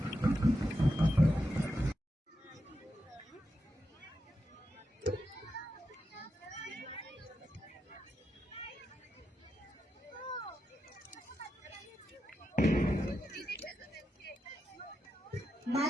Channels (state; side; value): normal; both; correlation 0.87